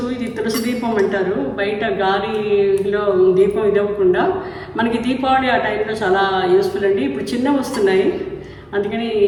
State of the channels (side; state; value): both; identical; correlation 1.00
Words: ఇది తులసి దీపం అంటారు. బయట గాలిలో దీపం ఇదవ్వకుండా మనకి దీపావళి ఆ టైంలో చాలా యూస్ఫుల్ అండి. ఇప్పుడు చిన్నవి వస్తున్నాయి, అందుకని